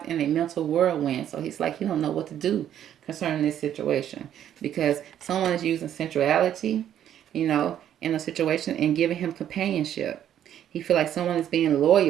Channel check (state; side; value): quieter; left; 10.5 dB